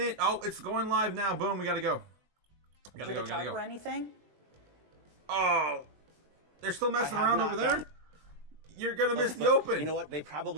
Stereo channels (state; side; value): late; left; 20 ms